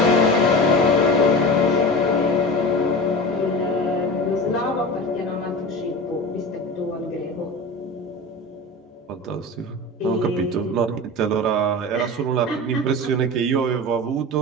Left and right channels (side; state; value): both; normal; correlation 0.30